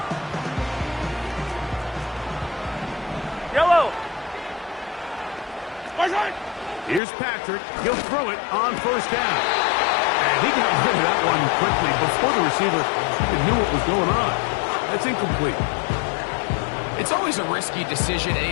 Yellow. Return. Here's Patrick. He'll throw it on first down. And he got rid of that one quickly before the receiver knew what was going on. That's incomplete. It's always a risky decision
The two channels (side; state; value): right; drops out; at 7.0 s